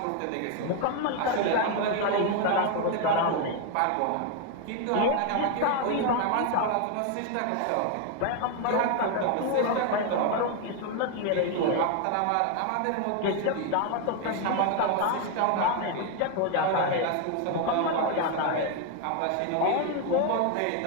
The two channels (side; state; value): both; different; correlation 0.01